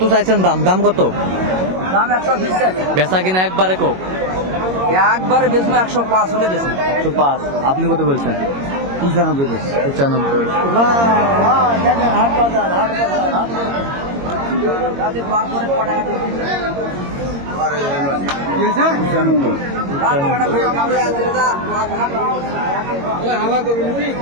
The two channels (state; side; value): late; left; 22 ms